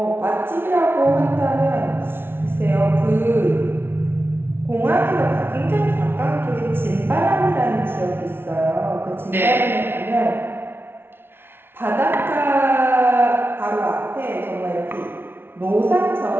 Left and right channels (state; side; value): late; left; 0.11 ms